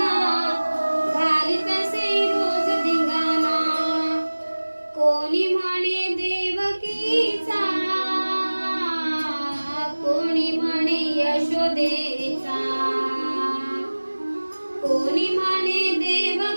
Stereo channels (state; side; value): inverted; both; correlation -1.00